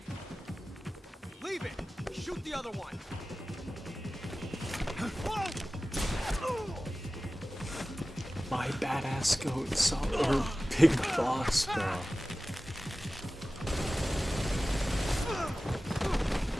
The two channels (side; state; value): both; normal; correlation 0.96